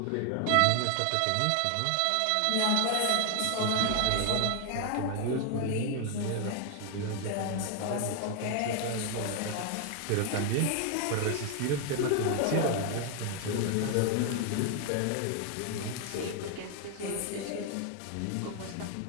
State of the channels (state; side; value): different; both; correlation 0.00